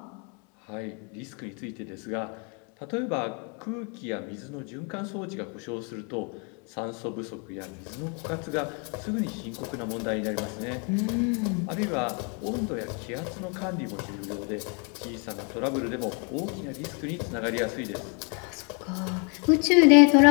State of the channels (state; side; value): quieter; right; 36.1 dB